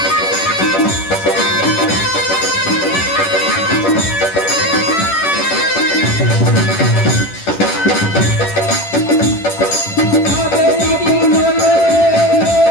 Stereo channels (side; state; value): right; late; 10 ms